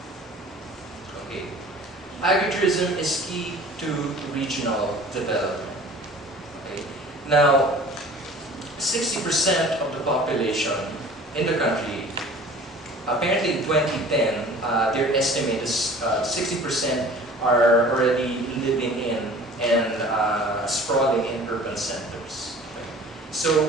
Okay. Agritourism is key to regional development. Okay. Now, 60% of the population in the country, apparently in 2010, their estimate is 60% are already living in and sprawling in urban centers. Okay.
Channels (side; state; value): both; normal; correlation 0.45